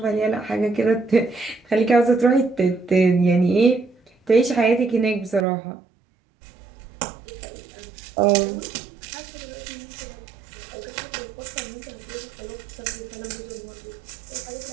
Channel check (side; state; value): left; drops out; at 5.5 s